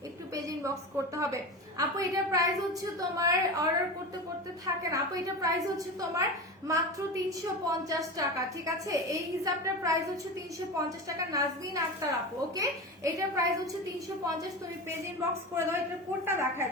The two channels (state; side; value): normal; both; correlation 0.26